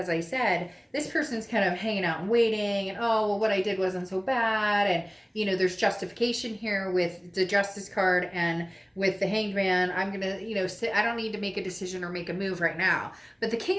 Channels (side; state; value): both; identical; correlation 1.00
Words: I said, this person's kind of hanging out and waiting, and oh, well, what I did wasn't so bad, and you know, there's justification here with the Justice card and with the Hanged Man. I'm gonna, you know, I don't need to make a decision or make a move right now. But the